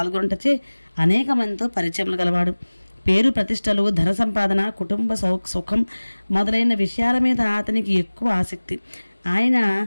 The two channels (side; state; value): both; inverted; correlation -1.00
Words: అనేక మందితో పరిచయములు గలవాడు. పేరు ప్రతిష్టలు, ధన సంపాదన, కుటుంబ సుఖం మొదలైన విషయాల మీద అతనికి ఎక్కువ ఆసక్తి. ఆయన